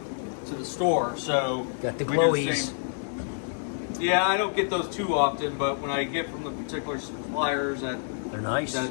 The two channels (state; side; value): silent; right; digital silence